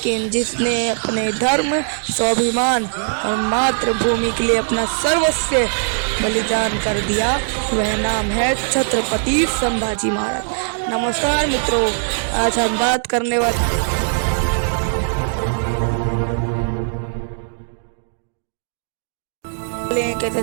जिसने अपने धर्म, स्वाभिमान और मातृभूमि के लिए अपना सर्वस्व बलिदान कर दिया, वह नाम है छत्रपति संभाजी महाराज। नमस्कार मित्रों, आज हम बात करने वाले एक ऐसे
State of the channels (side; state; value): left; silent; 65 dB below the other